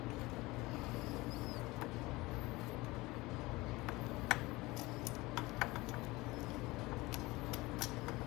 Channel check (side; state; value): right; quieter; 21.3 dB